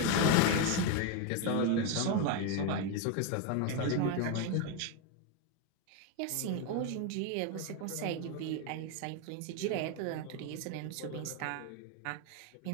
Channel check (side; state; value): both; different; correlation 0.02